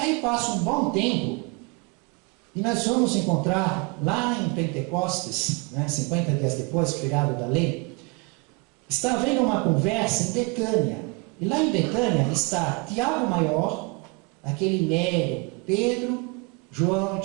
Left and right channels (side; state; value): left; quieter; 28.6 dB